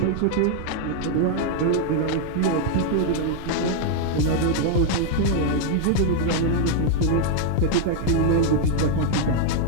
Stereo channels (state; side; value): different; both; correlation 0.00